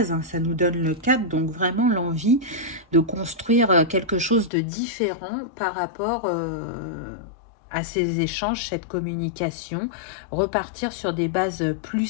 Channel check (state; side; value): drops out; right; at 4.5 s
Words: hein, ça nous donne le 4, donc vraiment l'envie de construire quelque chose de différent par rapport à ces échanges, cette communication, repartir sur des bases plus